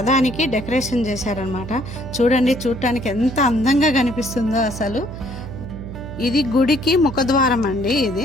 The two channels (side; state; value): right; noise; hum, 10 dB below the sound